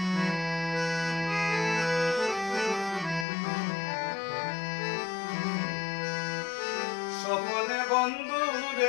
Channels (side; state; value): right; drops out; at 3.2 s